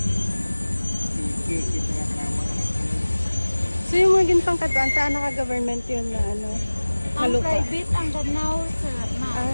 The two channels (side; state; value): both; inverted; correlation -1.00